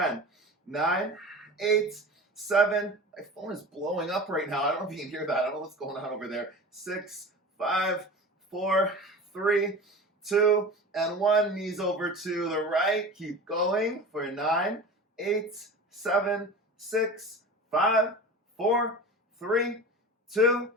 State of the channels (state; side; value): normal; both; correlation 0.34